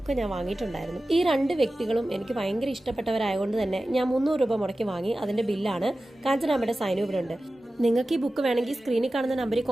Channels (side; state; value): both; normal; correlation 0.95